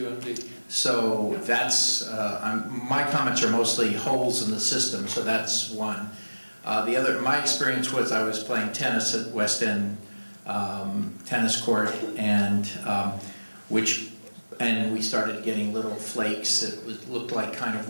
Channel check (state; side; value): inverted; both; correlation -1.00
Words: So that's, my comments are mostly holes in the system, so that's one. The other, my experience was I was playing tennis at West End tennis court, and we started getting little flakes. It looked like kind of